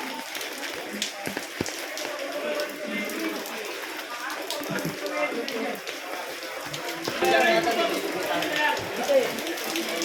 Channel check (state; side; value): identical; both; correlation 1.00